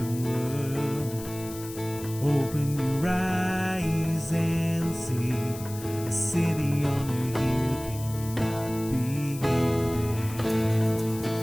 world. Open your eyes and see. A city on a hill cannot be hidden.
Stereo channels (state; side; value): noise; left; hiss, 14 dB below the sound